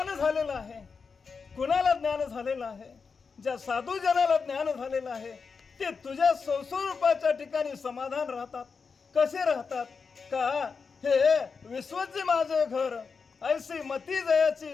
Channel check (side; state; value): right; quieter; 5.3 dB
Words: झालेलं आहे, कुणाला ज्ञान झालेलं आहे, ज्या साधू जनाला ज्ञान झालेलं आहे ते तुझ्या स्वरूपाच्या ठिकाणी समाधान राहतात. कसे राहतात का हे विश्वचे माझे घर ऐसी मती